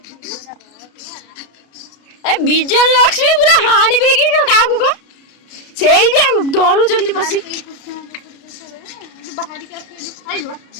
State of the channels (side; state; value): right; late; 33 ms